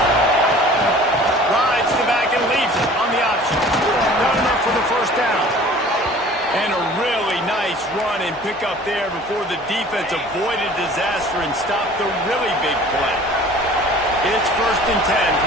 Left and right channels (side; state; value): both; normal; correlation 0.47